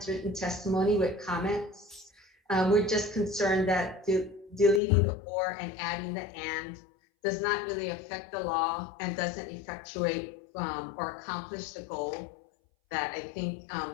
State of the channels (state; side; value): drops out; right; at 4.8 s